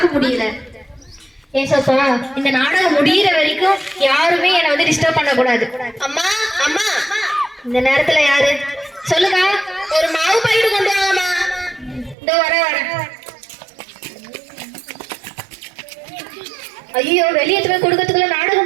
முடியல. ஏசப்பா, இந்த நாடகம் முடியிற வரைக்கும் யாருமே என்னை வந்து டிஸ்டர்ப் பண்ண கூடாது. அம்மா அம்மா, இந்த நேரத்துல யாரு சொல்லுங்க? ஒரு மாவு பாய்ட்டு கொண்டு வாங்கம்மா. இதோ வர. ஐயோ, வெளியே போய் கொடுக்கறதுக்குள்ள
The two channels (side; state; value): left; drops out; at 12.2 s